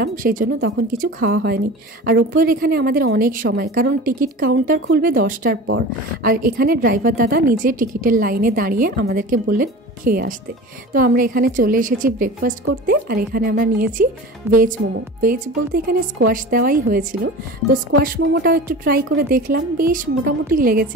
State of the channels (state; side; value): normal; both; correlation 0.35